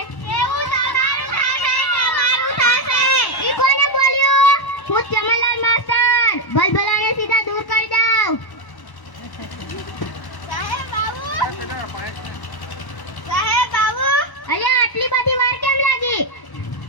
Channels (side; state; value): right; late; 1.1 ms